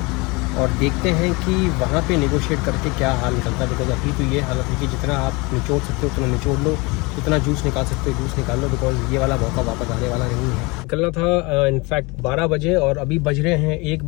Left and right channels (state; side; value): quieter; right; 26.2 dB